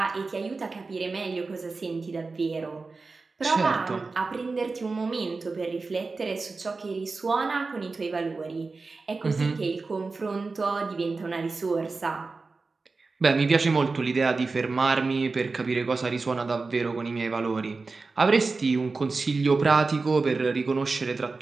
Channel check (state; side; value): quieter; left; 4.0 dB